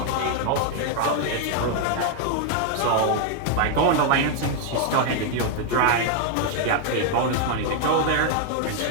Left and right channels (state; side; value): different; both; correlation 0.00